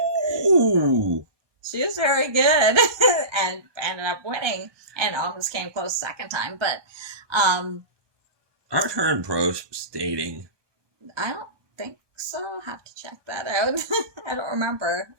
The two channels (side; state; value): left; late; 1.2 ms